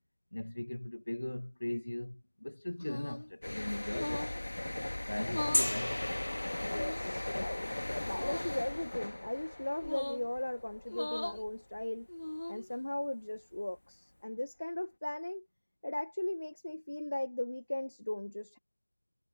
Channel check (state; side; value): inverted; both; correlation -1.00